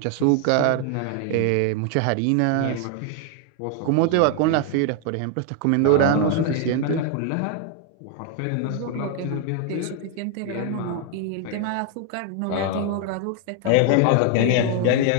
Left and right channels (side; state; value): both; different; correlation 0.00